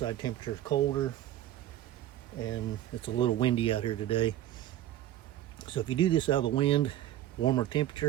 temperature is colder and it's a little windy out here today. So if you do this out of the wind, warmer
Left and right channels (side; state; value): left; quieter; 12.5 dB